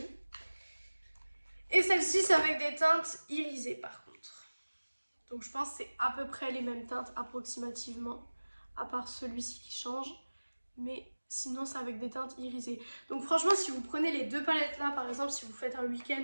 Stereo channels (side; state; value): both; inverted; correlation -1.00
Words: Et celle-ci, c'est avec des teintes irisées par contre. Donc je pense que c'est à peu près les mêmes teintes approximativement, à part celui-ci qui change. Mais sinon, c'est avec des teintes irisées. Donc franchement, si vous prenez les deux palettes là, par exemple, si vous faites un week-end